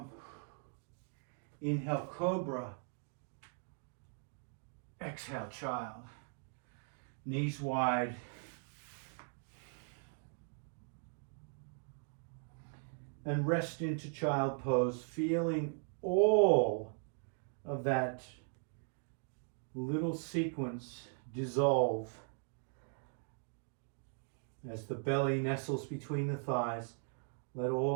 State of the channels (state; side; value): silent; left; 52 dB below the other